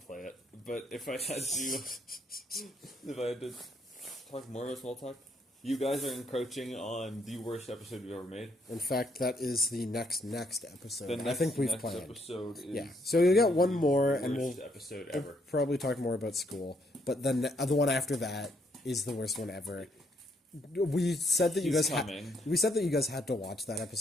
play it. But if I had to talk more about small talk, you guys are encroaching on the worst episode we've ever made. In fact, that is the next episode. The next, I think we've next planned. episode is Yeah, so you'll get one more, the and worst we'll episode we'll ever. probably talk more about school. But then the one after that is the worst one ever. We said that you He's guys coming. we said that you guys had to watch that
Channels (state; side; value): normal; both; correlation 0.72